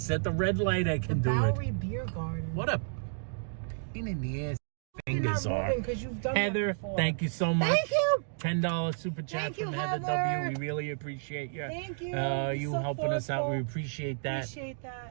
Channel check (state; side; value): silent; left; digital silence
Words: at the red light I The can do it. Bowery Beer Garden. What a pain in the ass fingers not are. moving because you've done Heather, that before. thank you so much. Thank you. $10 super chat Thank you, from Heather Heather. W. We really appreciate you. Thank you. You So helping us out. We thoughtful. appreciate that. Appreciate